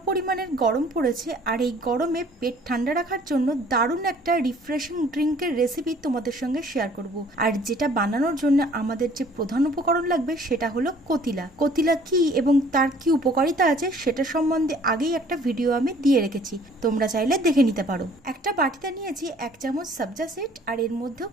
পরিমাণের গরম পড়েছে, আর এই গরমে পেট ঠান্ডা রাখার জন্য দারুণ একটা রিফ্রেশিং ড্রিঙ্কের রেসিপি তোমাদের সঙ্গে শেয়ার করব। আর যেটা বানানোর জন্য আমাদের যে প্রধান উপকরণ লাগবে সেটা হলো কতিলা। কতিলা কি এবং তার কি উপকারিতা আছে সেটা সম্বন্ধে আগেই একটা ভিডিও আমি দিয়ে রেখেছি, তোমরা চাইলে দেখে নিতে পারো। একটা বাটিতে নিয়েছি 1 চামচ সবজা সিড, আর এর মধ্যেও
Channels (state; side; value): normal; both; correlation 0.55